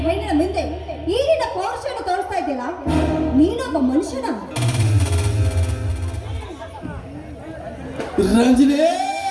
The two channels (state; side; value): identical; both; correlation 1.00